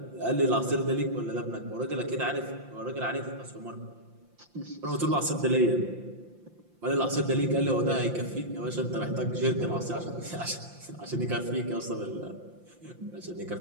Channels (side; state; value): left; late; 5.8 ms